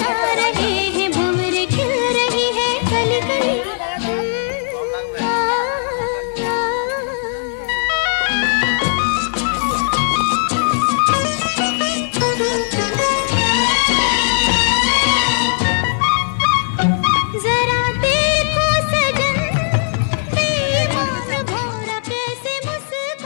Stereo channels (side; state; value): right; silent; digital silence